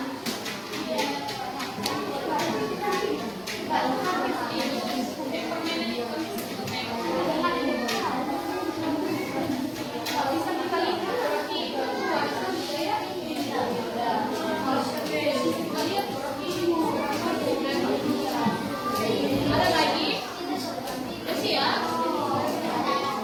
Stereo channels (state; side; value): identical; both; correlation 1.00